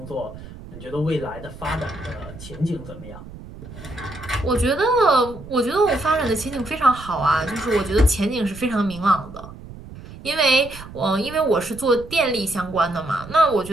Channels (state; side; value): noise; right; rumble, 15 dB below the sound